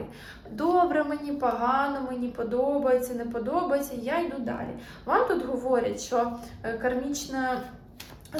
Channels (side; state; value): both; identical; correlation 1.00